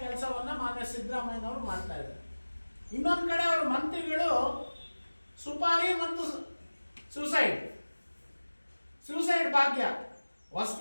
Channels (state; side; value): inverted; both; correlation -1.00